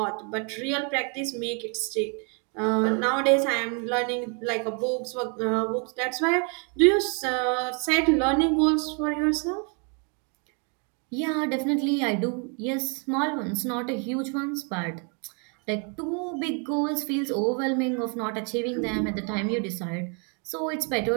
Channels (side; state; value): left; quieter; 37.4 dB